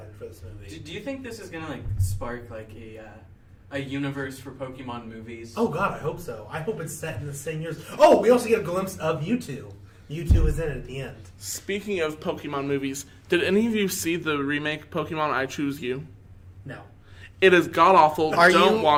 for this movie. Do you think this is gonna like spark like a universe for Pokemon movies? Oh God, I hope so. I hope it's set in the same years. Oh, we also get a glimpse of Mewtwo. Mewtwo is in it at the end. Speaking of Pokemon movies, did any of you see the remake Pokemon I Choose You? No. It is god awful. Don't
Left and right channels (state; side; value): identical; both; correlation 1.00